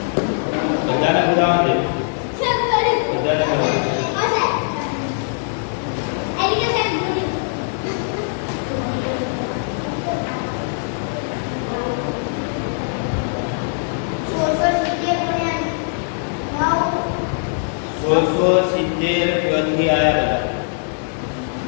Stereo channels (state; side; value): silent; right; digital silence